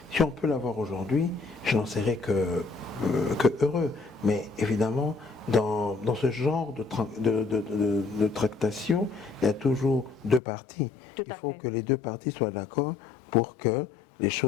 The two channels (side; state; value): right; drops out; at 10.4 s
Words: on peut l'avoir aujourd'hui, je n'en serais que heureux. Mais évidemment, dans ce genre de tractation, il y a toujours deux parties. Tout à fait. Il faut que les deux parties soient d'accord pour que les